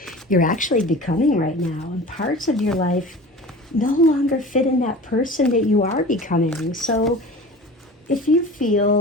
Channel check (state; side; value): normal; both; correlation 0.38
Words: you're actually becoming right now. And parts of your life no longer fit in that person that you are becoming. So if you